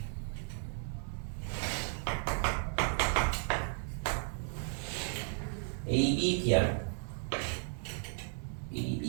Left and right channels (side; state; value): left; silent; 55 dB below the other